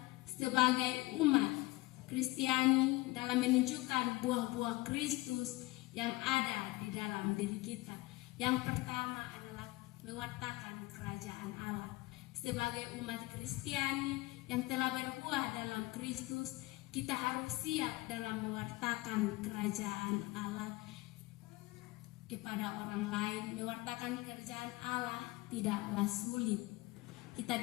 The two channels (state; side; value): quieter; right; 21.1 dB